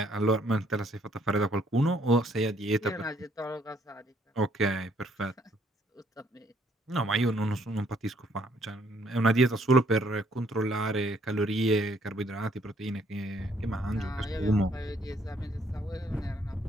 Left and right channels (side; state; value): both; normal; correlation 0.66